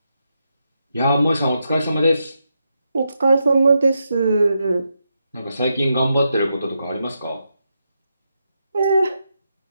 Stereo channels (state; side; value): inverted; both; correlation -0.84